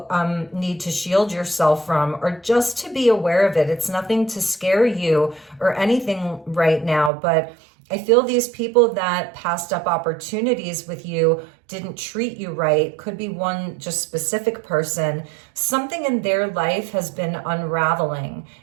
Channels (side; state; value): left; drops out; at 7.1 s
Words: need to shield yourself from, or just to be aware of it. It's nothing to scare you or anything right now, but I feel these people that passed up opportunities with you, didn't treat you right, could be one just specific person. Something in their life has been unraveling.